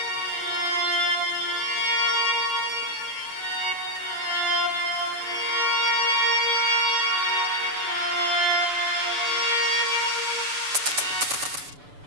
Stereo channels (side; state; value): left; late; 6.9 ms